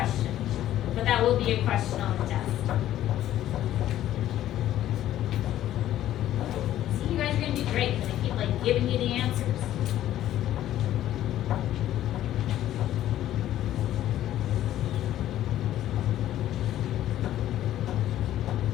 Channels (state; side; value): quieter; right; 12.7 dB